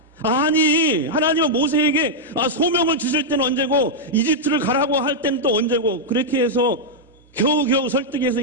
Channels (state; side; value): normal; both; correlation -0.04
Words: 아니, 하나님은 모세에게 소명을 주실 때는 언제고 이집트를 가라고 할 때는 또 언제고, 그렇게 해서 겨우겨우 설득해서